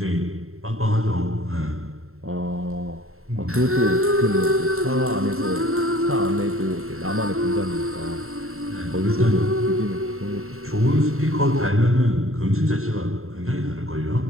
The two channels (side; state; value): left; late; 0.62 ms